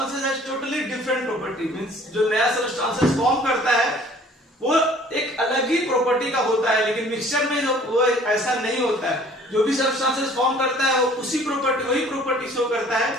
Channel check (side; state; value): both; normal; correlation 0.53